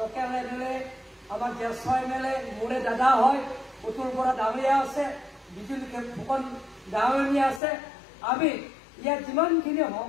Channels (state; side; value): drops out; right; at 7.6 s